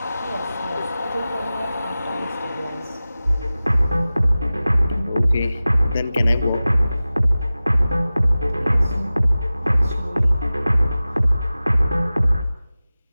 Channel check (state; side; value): inverted; both; correlation -0.96